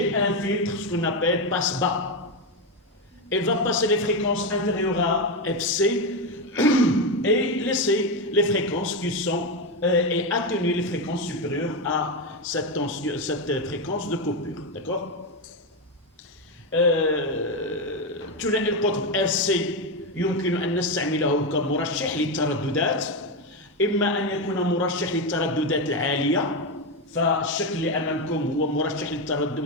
un filtre, ce qu'on appelle passe-bas. Elle va passer les fréquences inférieures à FC et laisser les fréquences qui sont et atténuer les fréquences supérieures à cette fréquence de coupure. D'accord? ثنائي القطب RC يمكن أن نستعمله كمرشح للترددات، إما أن يكون مرشح للترددات العالية، فالشكل اللي أمامكم هو مرشح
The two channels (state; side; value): normal; both; correlation 0.10